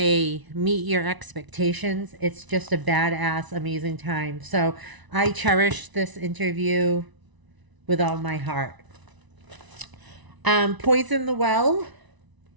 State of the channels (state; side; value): late; left; 1.0 ms